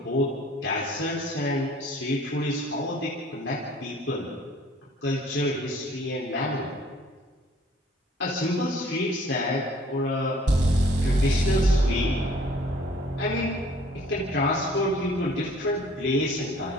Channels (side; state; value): both; normal; correlation 0.55